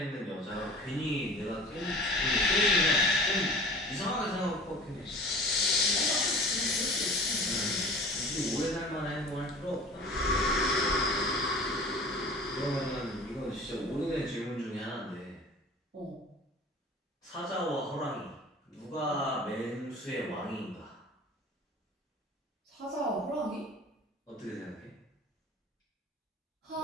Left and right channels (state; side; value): normal; both; correlation 0.42